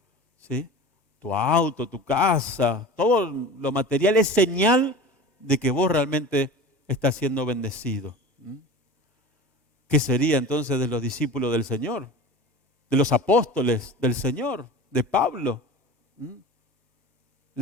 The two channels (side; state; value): both; normal; correlation 0.35